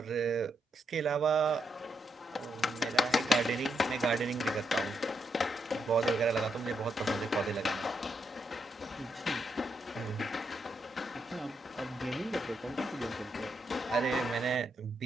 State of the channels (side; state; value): both; normal; correlation 0.80